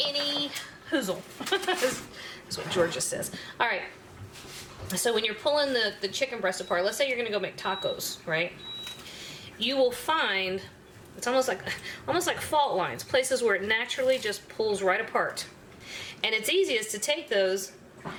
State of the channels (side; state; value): both; identical; correlation 1.00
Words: hoozle. That's what Georgia says. All right. So when you're pulling the chicken breast apart, let's say you're gonna go make tacos, right? You will find, it's almost like fault lines, places where it naturally just pulls right apart. And it's easiest to take those,